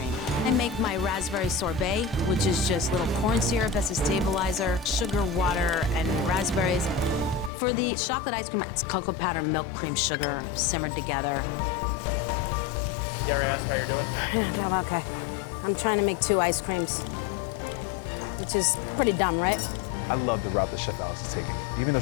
I make my raspberry sorbet, which is just little corn syrup as a stabilizer, sugar, water, and raspberries. For the chocolate ice cream, it's cocoa powder, milk, cream, sugar, simmered together. Gary asked how you're doing. Yeah, I'm okay. I'm trying to make 2 ice creams, which is pretty dumb, right? I love the route that Chef Alex is taking. Even though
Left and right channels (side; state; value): right; drops out; at 7.5 s